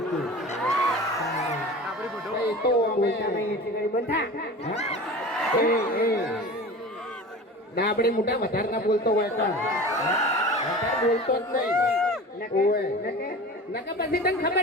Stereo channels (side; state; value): both; normal; correlation 0.36